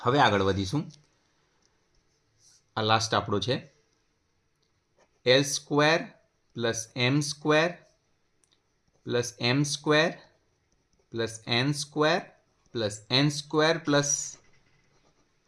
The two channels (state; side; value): identical; both; correlation 1.00